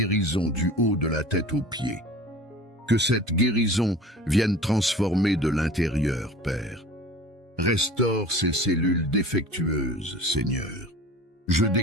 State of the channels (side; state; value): both; normal; correlation 0.41